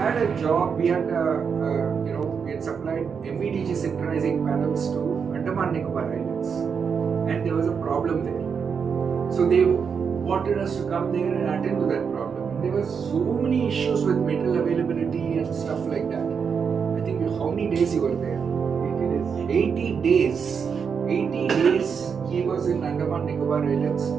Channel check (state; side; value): quieter; left; 6.4 dB